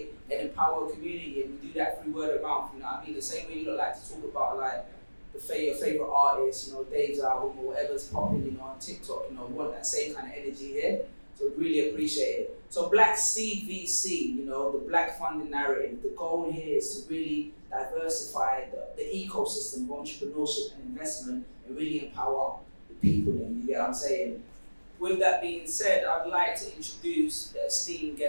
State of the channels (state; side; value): inverted; both; correlation -1.00